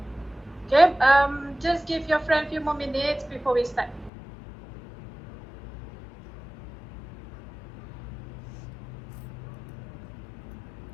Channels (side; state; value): right; drops out; at 4.1 s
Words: Okay, just give your friend a few more minutes before we start.